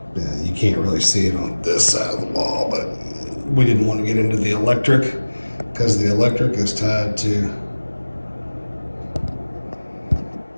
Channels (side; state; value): both; inverted; correlation -1.00